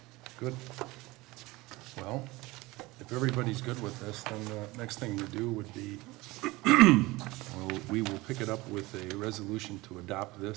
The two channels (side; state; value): left; quieter; 21.2 dB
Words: good. Well, if everybody's good with this, then the next thing to do would be, we will pick it up with a resolution to adopt